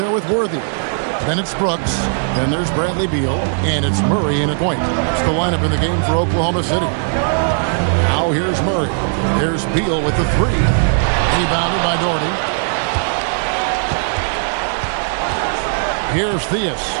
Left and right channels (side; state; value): left; silent; digital silence